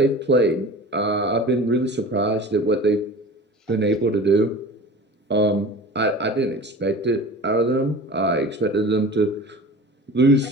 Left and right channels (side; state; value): both; normal; correlation 0.38